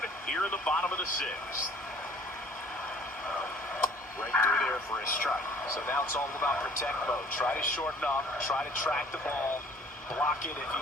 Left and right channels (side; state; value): both; normal; correlation 0.55